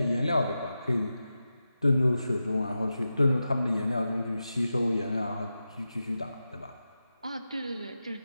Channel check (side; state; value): both; inverted; correlation -0.92